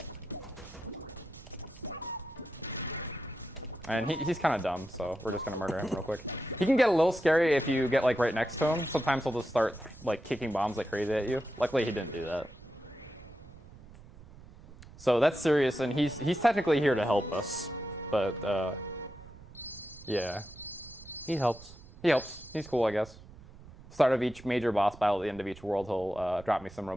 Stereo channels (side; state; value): right; noise; rumble, 19 dB below the sound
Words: And he's kind of dumb, so we're just gonna murder him real quick. He can get a little scary if you get like right next to him. Sometimes he'll just start like kicking bombs like crazy at you. Luckily, he didn't do that. So that's Sirius, and he's technically here to help us, but yeah. He helps. He helps. He's cool, I guess. Start of each major boss battle, at the end of each world, he'll drop me some